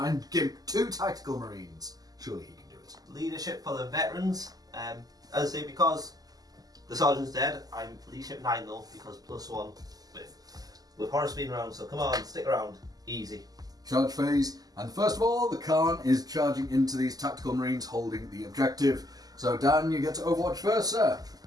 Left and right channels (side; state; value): left; late; 0.18 ms